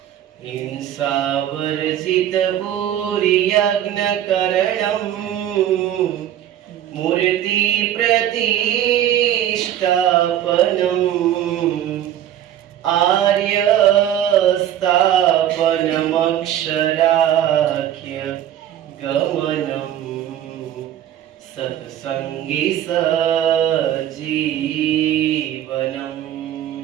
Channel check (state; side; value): quieter; left; 11.3 dB